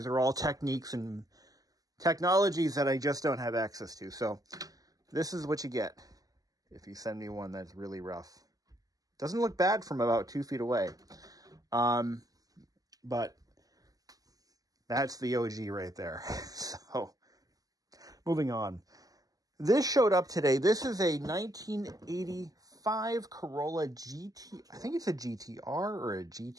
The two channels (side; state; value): left; late; 0.17 ms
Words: are all techniques and technologies that I just don't have access to. So this is what you get if you send me one that's really rough. Doesn't look bad from about 2 feet away. But that's the OG right there. So moving on. This showed up today. This is a 1985 Corolla GT. I think it's a GTR or a